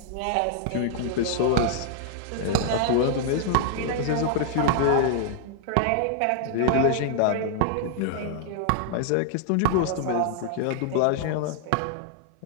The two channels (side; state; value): both; different; correlation -0.01